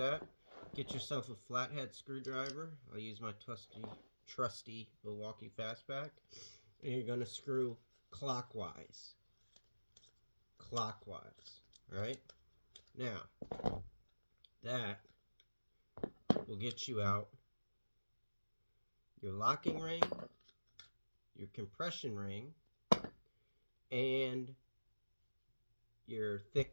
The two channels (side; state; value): both; inverted; correlation -1.00